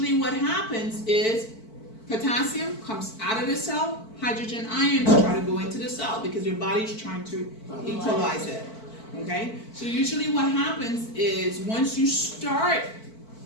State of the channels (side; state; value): right; late; 4.5 ms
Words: what happens is potassium comes out of the cell, hydrogen ions try to go into the cell because your body's trying to equalize it. Okay? So usually what happens is once you start